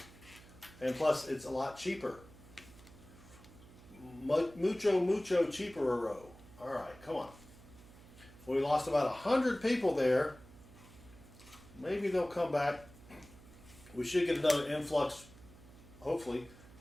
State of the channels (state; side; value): noise; right; hum, 21 dB below the sound